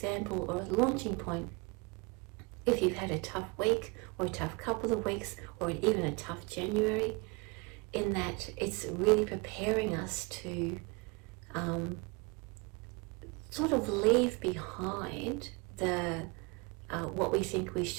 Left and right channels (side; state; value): left; quieter; 28.2 dB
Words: or a launching point. If you've had a tough week or a tough couple of weeks or even a tough January, in that it's really preparing us to sort of leave behind what we think we